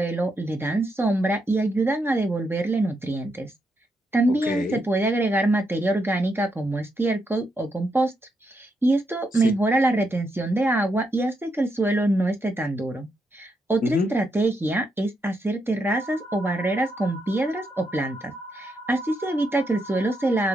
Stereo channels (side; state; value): both; normal; correlation 0.80